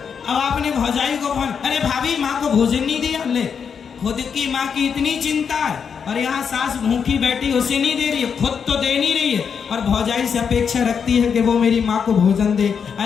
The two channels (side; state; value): right; quieter; 6.7 dB